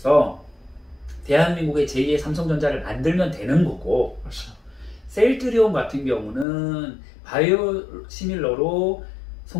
대한민국의 제2의 삼성전자를 만들면 되는 거고, 셀트리온 같은 경우는 바이오 시밀러로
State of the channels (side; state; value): right; drops out; at 6.5 s